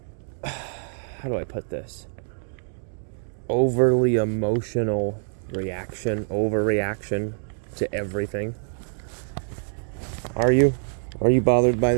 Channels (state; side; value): silent; left; digital silence